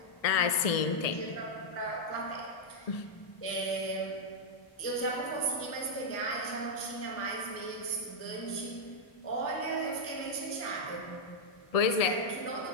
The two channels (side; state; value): right; late; 1.6 ms